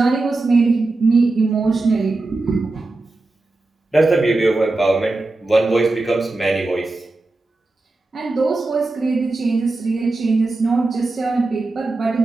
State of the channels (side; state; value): left; quieter; 3.2 dB